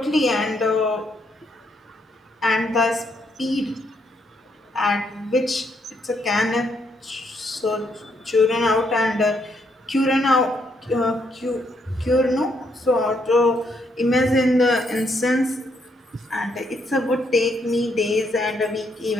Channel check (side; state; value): both; normal; correlation 0.74